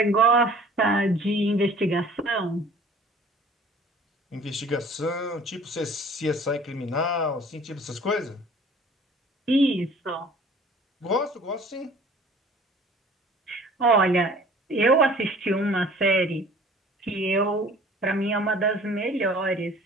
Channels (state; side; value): normal; both; correlation 0.49